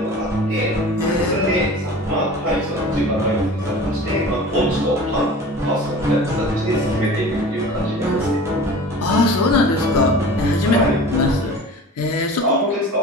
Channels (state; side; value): normal; both; correlation 0.40